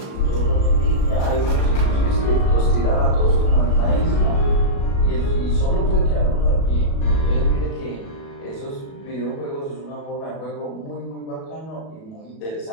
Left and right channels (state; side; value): late; right; 37 ms